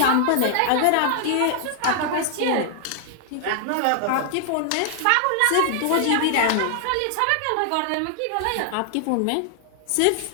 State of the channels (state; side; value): different; both; correlation 0.00